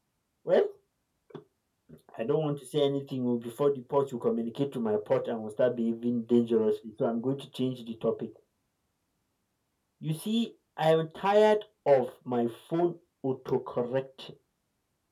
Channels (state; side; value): identical; both; correlation 1.00